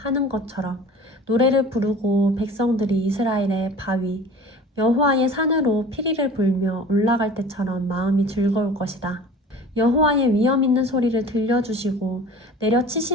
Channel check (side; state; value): both; normal; correlation 0.42